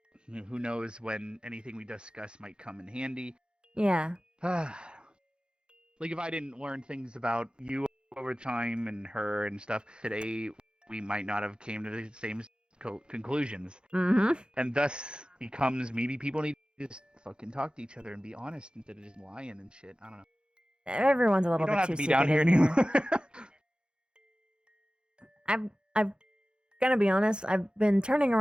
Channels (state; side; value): late; left; 0.050 ms